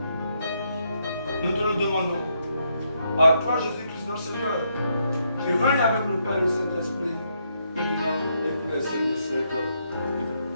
Nous te le demandons. À toi, Jésus-Christ, notre Seigneur, qui règne avec le Père et le Saint-Esprit, maintenant et pour les siècles des siècles.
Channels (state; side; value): inverted; both; correlation -0.76